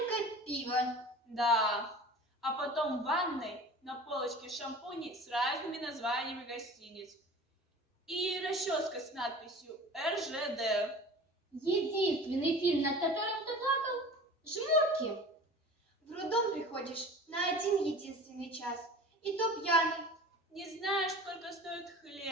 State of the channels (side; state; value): both; normal; correlation 0.40